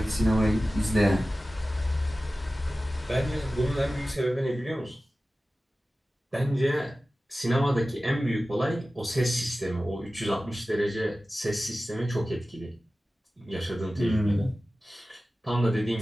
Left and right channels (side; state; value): both; normal; correlation 0.96